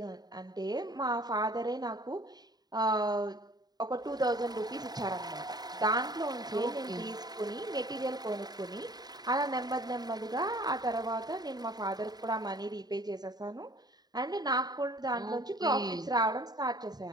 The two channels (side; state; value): left; late; 0.19 ms